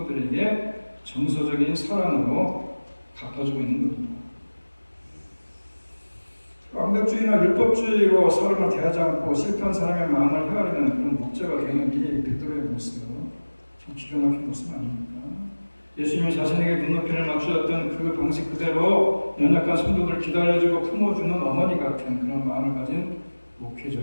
정서적인 사랑으로 갚아주고 있는 겁니다. 완벽주의나 율법주의로 사람을 대하지 않고 실패한 사람의 마음을 헤아리는 그런 목자가 되는 게 베드로의 모습, 참 기가 막힌 모습 아닙니까? 예수님이 자신에게 눈높이를 맞추었던 그 방식 그대로 연약한 성도들을 기다려주고 품어주는 어머니 같은 그런 마음을 가진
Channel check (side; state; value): both; inverted; correlation -1.00